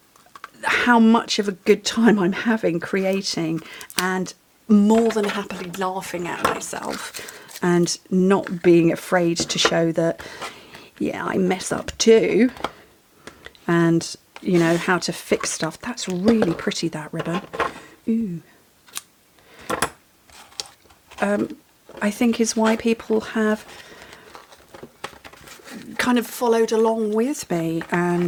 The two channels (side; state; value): both; identical; correlation 1.00